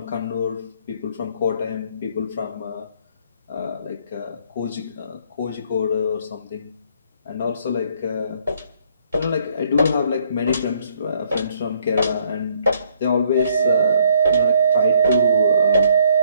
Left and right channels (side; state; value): both; inverted; correlation -0.66